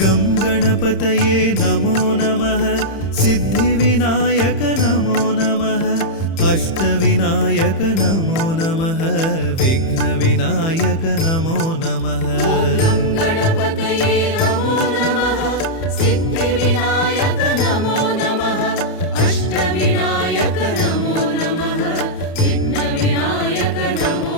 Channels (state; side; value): late; right; 30 ms